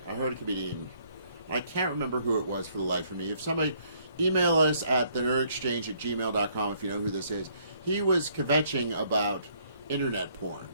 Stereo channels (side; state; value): both; inverted; correlation -0.66